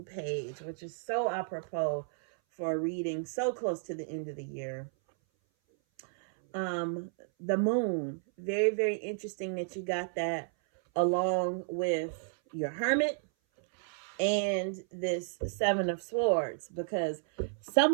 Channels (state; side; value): silent; left; 56 dB below the other